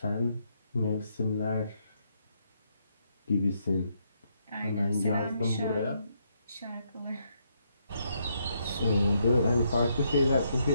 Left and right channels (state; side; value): inverted; both; correlation -0.76